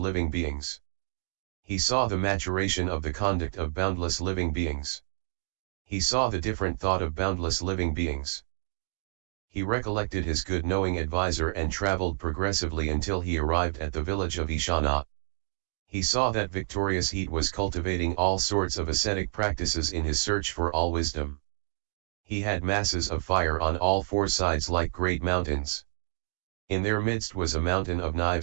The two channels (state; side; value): silent; left; digital silence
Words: beings. He saw the maturation of the conduct of boundless living beings. He saw the different thought of boundless living beings. He recollected his good knowing advisor and traveled progressively until he arrived at the village of Ishana. He saw that victorious heat was cultivating all sorts of ascetic practices in his search for all wisdom. He had masses of fire on all 4 sides like great mountains. In their midst was a mountain of